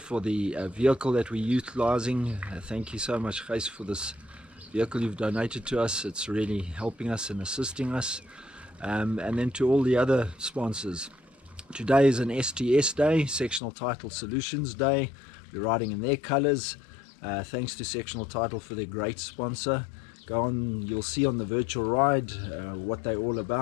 for the vehicle that we're utilizing. Thank you so much, Gijs, for this vehicle you've donated to us. It's really helping us and assisting us. And then to all the other sponsors. Today is an STS day, Sectional Title Solutions Day. We're riding in their colors. Thanks to Sectional Title for their great sponsor. Go on, you'll see on the virtual ride what they're all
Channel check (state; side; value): drops out; right; at 13.6 s